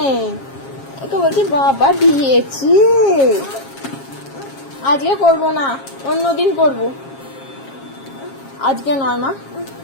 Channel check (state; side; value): late; right; 7.4 ms